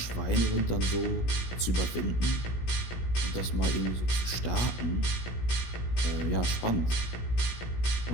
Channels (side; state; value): right; late; 17 ms